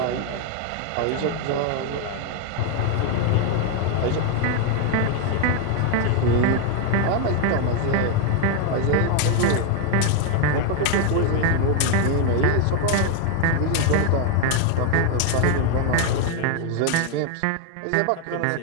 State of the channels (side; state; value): both; different; correlation 0.01